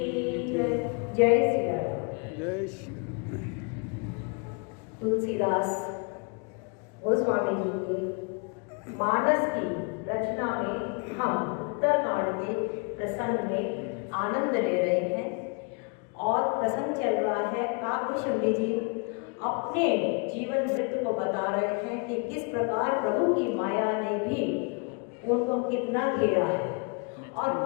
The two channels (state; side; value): quieter; right; 34.9 dB